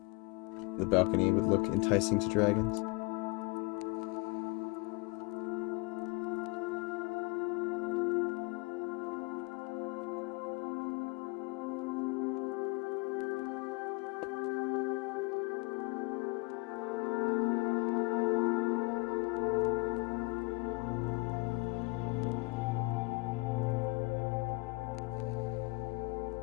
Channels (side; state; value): right; quieter; 29.3 dB